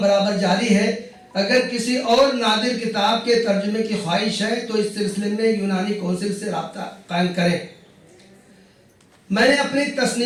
बराबर जारी है। अगर किसी और नादिर किताब के तर्जुमे की ख्वाहिश है तो इस सिलसिले में यूनानी काउंसिल से रब्ता कायम करें। मैंने अपनी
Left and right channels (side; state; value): both; identical; correlation 1.00